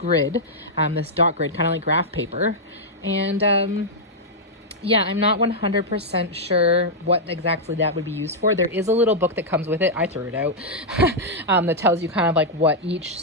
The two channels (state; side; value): normal; both; correlation -0.06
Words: this dot grid, kind of like graph paper. And yeah, I'm not 100% sure what exactly that would be used for. There is a little book that comes with it. I threw it out. That tells you kind of like what each